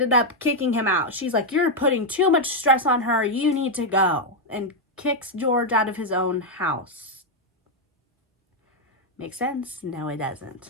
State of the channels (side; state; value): both; normal; correlation 0.01